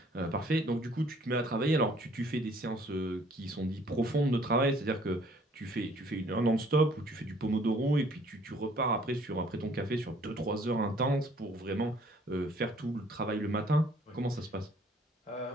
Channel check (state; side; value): normal; both; correlation 0.59